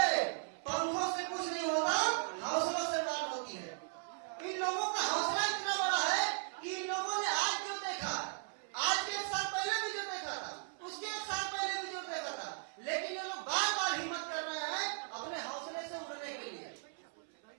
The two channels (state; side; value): silent; left; 53 dB below the other